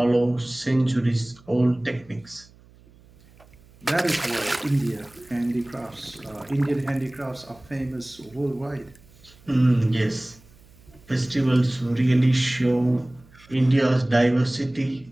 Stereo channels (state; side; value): noise; right; hum, 26 dB below the sound